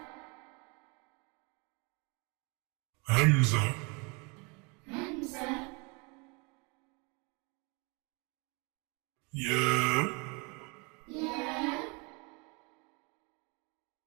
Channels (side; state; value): left; quieter; 30.7 dB